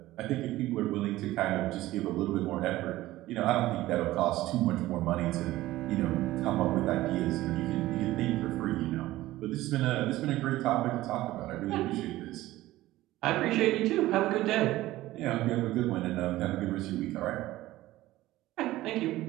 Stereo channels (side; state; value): left; quieter; 16.5 dB